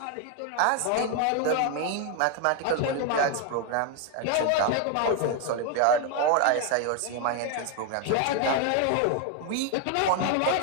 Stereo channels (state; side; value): different; both; correlation 0.01